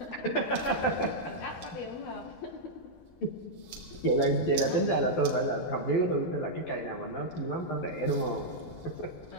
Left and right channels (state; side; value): late; right; 12 ms